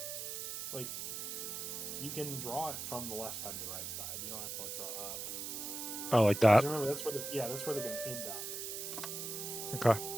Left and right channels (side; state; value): right; noise; hiss, 5 dB below the sound